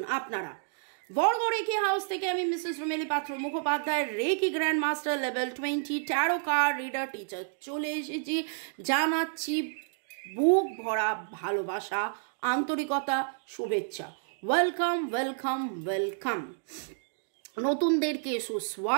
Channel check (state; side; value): silent; left; digital silence